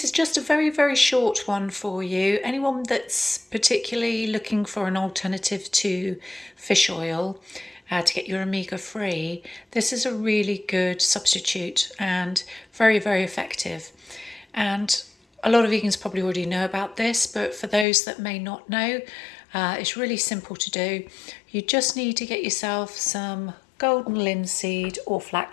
is just a very short one for you. Anyone that's particularly looking for an alternative to fish oil to get your omega-3, this is a really good substitute and very effective. And a lot of vegans probably already know about this, but for those that may not know, it's really simple to do. You just need to get yourself some golden linseed or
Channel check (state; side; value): drops out; right; at 17.9 s